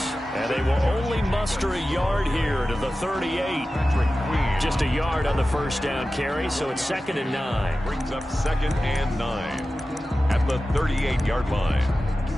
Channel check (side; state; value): both; normal; correlation 0.94